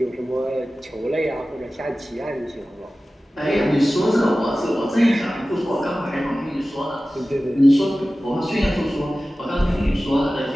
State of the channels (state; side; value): normal; both; correlation 0.96